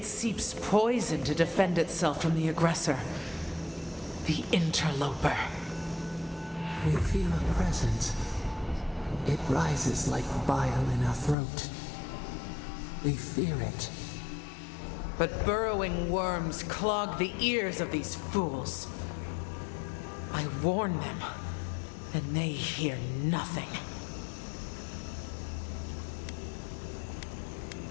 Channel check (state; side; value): drops out; right; at 11.4 s